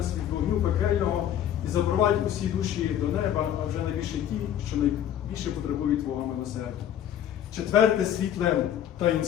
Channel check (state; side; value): quieter; right; 10.4 dB